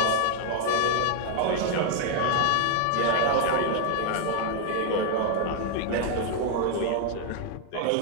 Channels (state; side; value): different; both; correlation 0.00